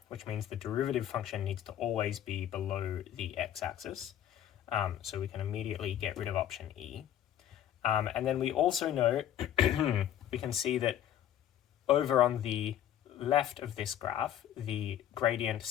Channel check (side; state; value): right; quieter; 11.0 dB